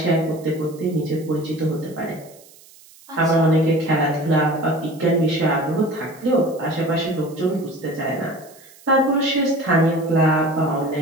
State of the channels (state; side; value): noise; right; hiss, 24 dB below the sound